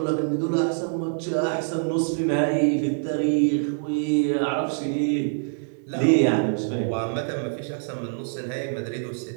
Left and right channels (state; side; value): silent; left; digital silence